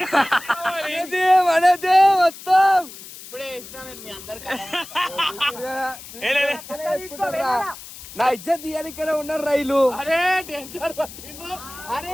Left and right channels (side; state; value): left; noise; hiss, 15 dB below the sound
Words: మనదే మొత్తం ఇప్పుడే వేసిన నేను మీ అందరికి. నా ఇజ్జత్ తీయాలి ఉన్నారు రైలు. అరే టెన్షన్ పట్టిండు.